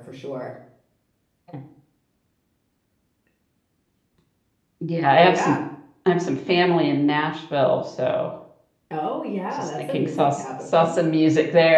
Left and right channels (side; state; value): both; identical; correlation 1.00